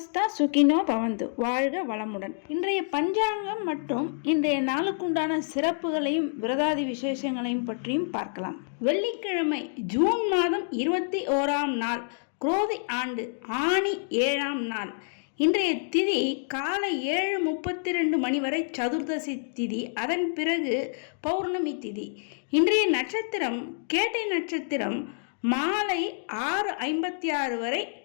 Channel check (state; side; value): silent; right; digital silence